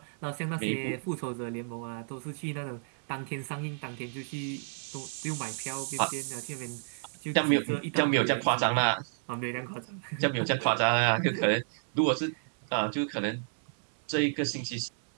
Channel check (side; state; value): left; silent; 57 dB below the other